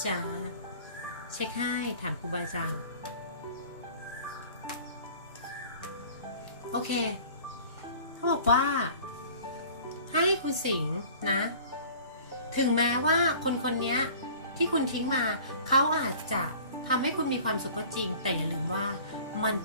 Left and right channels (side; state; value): both; inverted; correlation -0.46